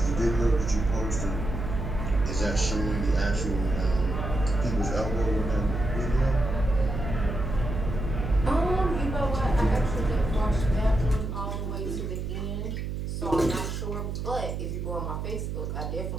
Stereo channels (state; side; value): noise; right; hum, 4 dB below the sound